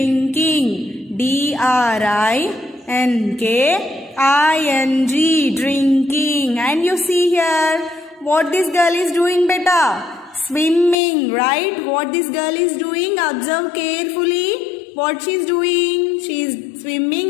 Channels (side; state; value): right; drops out; at 11.0 s